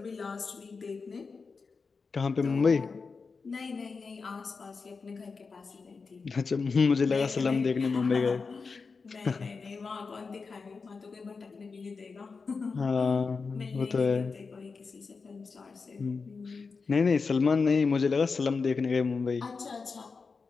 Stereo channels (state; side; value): quieter; right; 4.7 dB